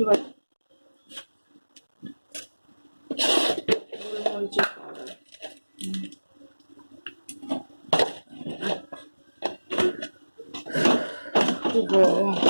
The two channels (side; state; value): both; inverted; correlation -1.00